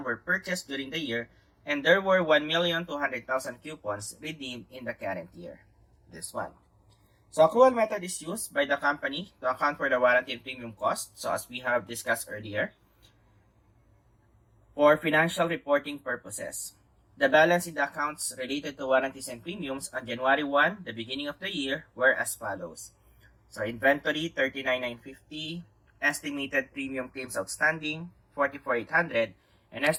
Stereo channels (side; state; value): both; identical; correlation 1.00